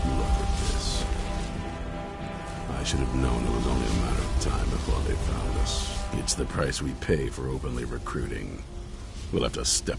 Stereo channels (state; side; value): identical; both; correlation 1.00